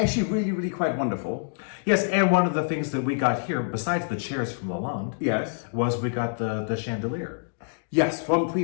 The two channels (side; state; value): right; silent; digital silence